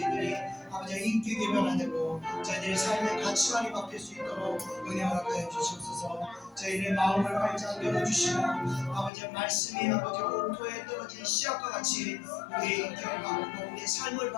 아버지의 인격이 변화되고 저희들의 삶의 가치관이 바뀔 수 있도록 은혜 허락하여 주시옵소서. 저희들의 마음을 활짝 열어주시고 아버지의 말씀이 아버지 옥토에 떨어진 씨앗과 같이 우리의 인격을 바꾸고 우리의 삶을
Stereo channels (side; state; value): right; drops out; at 9.1 s